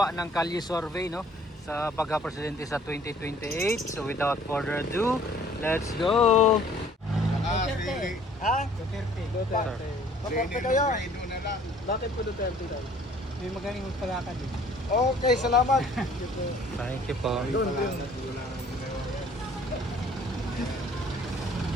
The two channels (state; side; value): normal; both; correlation 0.56